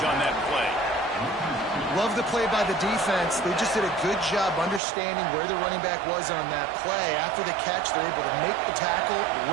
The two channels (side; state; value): left; drops out; at 4.8 s